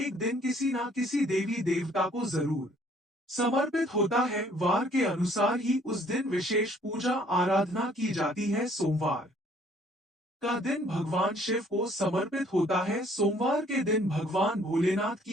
दिन किसी ना किसी देवी देवता को जरूर समर्पित होता है। वार के अनुसार ही उस दिन विशेष पूजा आराधना की जाती है। सोमवार का दिन भगवान शिव को समर्पित होता है। सोमवार के दिन भगवान भोलेनाथ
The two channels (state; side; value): normal; both; correlation 0.60